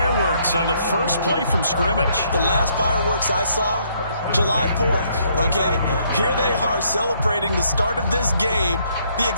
on the first play from scrimmage. The last fireworks I saw, July 4th, okay? Here they are celebrating the start of this game the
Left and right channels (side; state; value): both; inverted; correlation -0.69